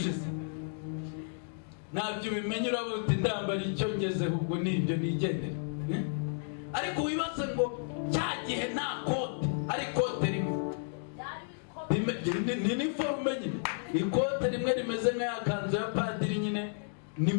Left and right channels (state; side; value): silent; right; digital silence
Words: Ntabyo ubimenye, uravuga uti ndambara icyo ngezeho, ubwo nibyo nigendera. Ariko wibaze ngo cya gihe nta kote, ari kote rimwe, ni iniforume nyine. Ikote rimwe rimeze nk'aya kanzu ya padiri nyine, ni